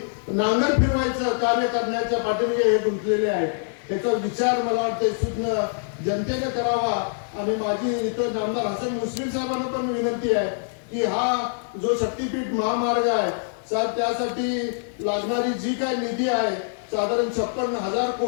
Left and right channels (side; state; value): right; silent; 59 dB below the other